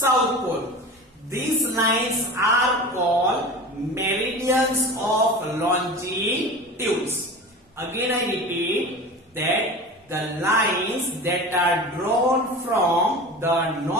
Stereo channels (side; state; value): both; normal; correlation 0.33